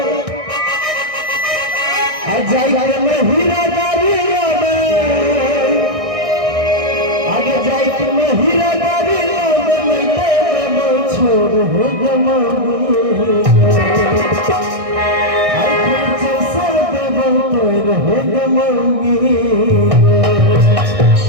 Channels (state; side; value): late; left; 1.6 ms